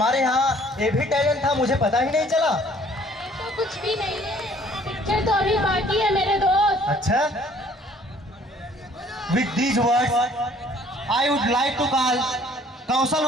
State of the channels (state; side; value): normal; both; correlation 0.57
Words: यहाँ ये भी टैलेंट था, मुझे पता ही नहीं चला। तो कुछ भी नहीं है, पिक्चर तो अभी बाकी है मेरे दोस्त। अच्छा, with these words I would like to call Kaushal